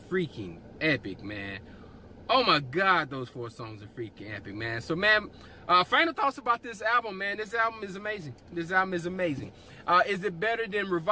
epic, man. Oh my God, those 4 songs are freaking epic, man. So, man, final thoughts about this album, man. This album is amazing. This album is amazing. Is it better than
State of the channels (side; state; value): both; identical; correlation 1.00